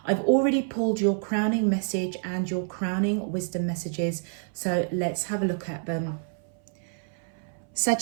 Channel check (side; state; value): left; silent; 58 dB below the other